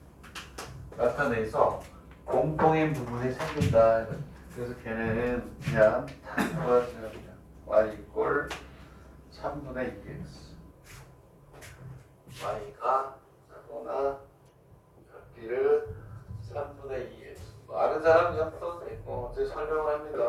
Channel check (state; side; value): identical; both; correlation 1.00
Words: 나타내서 공통인 부분이 생긴다. 그래서 걔는 그냥 구하세요. y 이꼴 3분의 2x. y가 작거나 작기를 3분의 2x. 아는 사람 그냥 풀어도 되고, 제가 설명을 합니다.